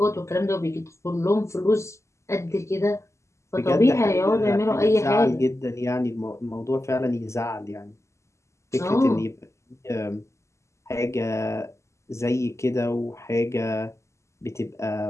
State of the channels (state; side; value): late; right; 0.14 ms